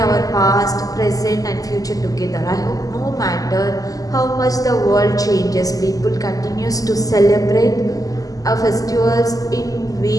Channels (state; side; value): late; right; 0.17 ms